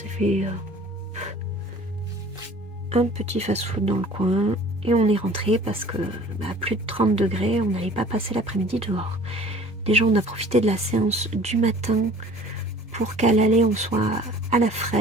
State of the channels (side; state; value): both; normal; correlation 0.48